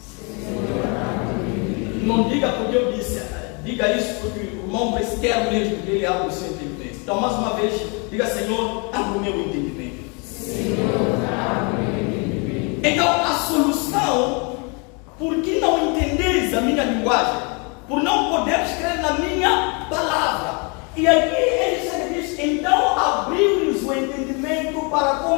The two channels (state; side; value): quieter; right; 33.1 dB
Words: Não diga porque eu disse, diga isso porque o irmão quer mesmo que ele abra o seu entendimento. Então, mais uma vez, diga, Senhor, abra o meu entendimento. Senhor, abra o meu entendimento. Então, a solução, por que não entendeis a minha linguagem? Por não poderes crer na minha palavra. E aqui ele diz, então abriu-lhes o entendimento para